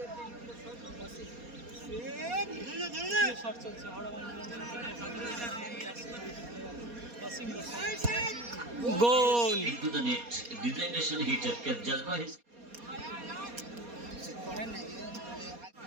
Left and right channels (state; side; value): late; left; 4.2 ms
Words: goal. Into the net, designation hitter can judge by his.